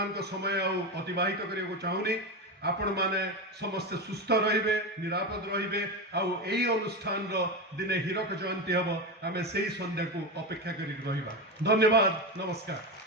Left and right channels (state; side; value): normal; both; correlation 0.17